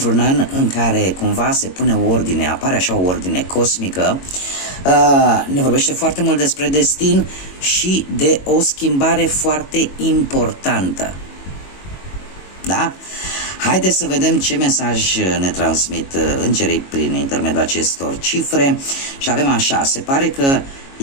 an în care cumva se pune o ordine, apare așa o ordine cosmică, ne vorbește foarte mult despre destin și de o schimbare foarte importantă. Da? Haideți să vedem ce mesaj ne transmit îngerii prin intermediul acestor cifre și avem așa, se pare că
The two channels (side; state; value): right; late; 22 ms